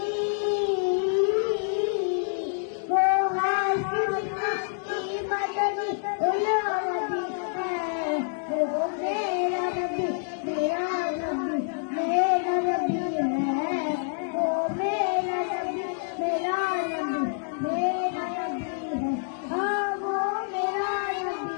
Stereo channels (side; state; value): right; silent; digital silence